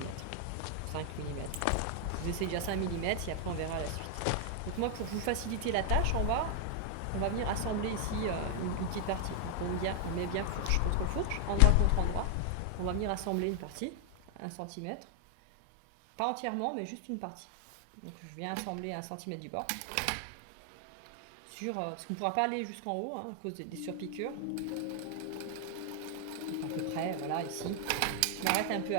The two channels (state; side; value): different; both; correlation 0.00